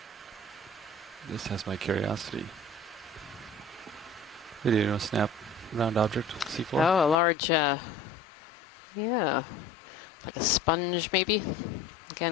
This has my curiosity. Video snap round object, seafloor. Oh, a large, yeah, like a sponge maybe.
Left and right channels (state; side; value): drops out; right; at 7.2 s